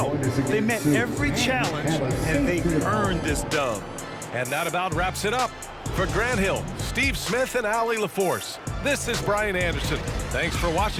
They met every challenge, and they earned this dub. And that about wraps it up. For Grant Hill, Steve Smith, and Allie LaForce, this is Brian Anderson. Thanks for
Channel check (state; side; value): identical; both; correlation 1.00